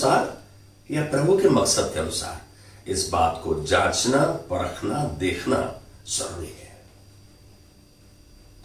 या प्रभु के मकसद के अनुसार? इस बात को जांचना, परखना, देखना जरूरी है।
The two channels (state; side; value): identical; both; correlation 1.00